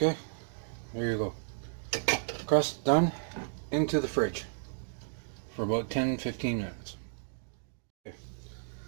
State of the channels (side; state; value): left; silent; digital silence